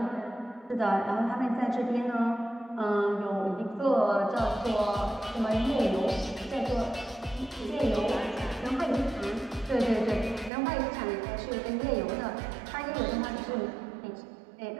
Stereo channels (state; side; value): drops out; left; at 10.5 s